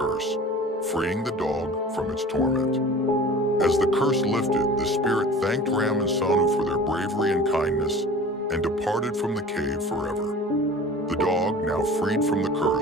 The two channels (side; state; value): both; normal; correlation 0.41